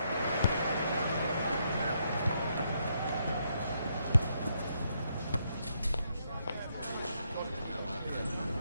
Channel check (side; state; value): both; inverted; correlation -0.76